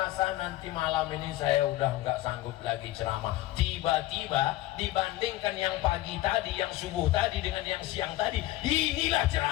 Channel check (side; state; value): right; quieter; 16.2 dB